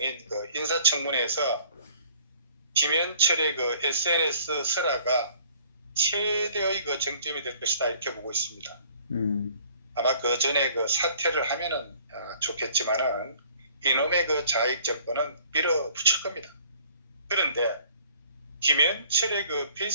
그 인사청문회에서 김현철의 그 SNS 설화가 최대의 그 정점이 될 것이다 이렇게 보고 있습니다. 아마 그 전에 그 사퇴를 하면은 좋겠지만은 이놈의 그 자익 정권은 밀어붙일 겁니다. 그런데 김현철의 그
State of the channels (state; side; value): inverted; both; correlation -0.54